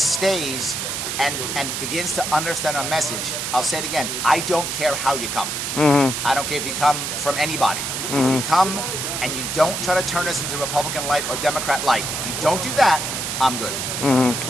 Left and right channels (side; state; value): right; noise; hiss, 3 dB below the sound